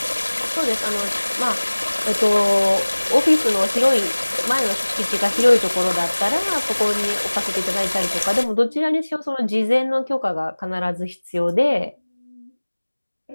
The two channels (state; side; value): inverted; both; correlation -1.00